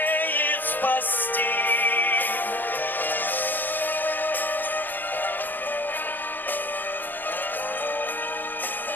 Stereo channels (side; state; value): right; late; 0.089 ms